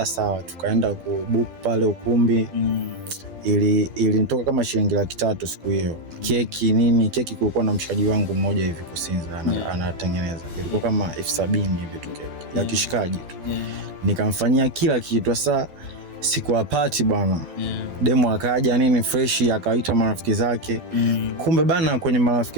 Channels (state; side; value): late; left; 12 ms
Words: Sawa, tukaenda kubook pale ukumbi. Ilinitoka kama shilingi 300 siku hiyo. Keki kulikuwa na mshikaji wangu mmoja hivi Kusinza anatengeneza. Ilikuwa kama 70,000 hivi tu keki ya kishikaji tu. Nikamfanyia kila kitu. Sasa siku ya party bwana, demo akaja nini fresh, akaita marafiki zake. Kumbe bana, kwenye